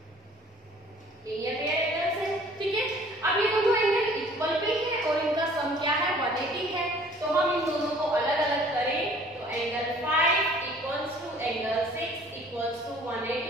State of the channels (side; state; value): both; normal; correlation 0.53